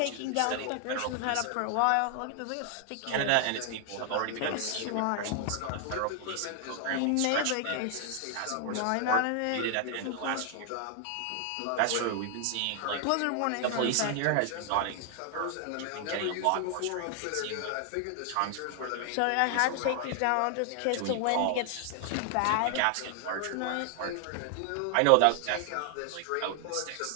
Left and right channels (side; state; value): both; different; correlation 0.00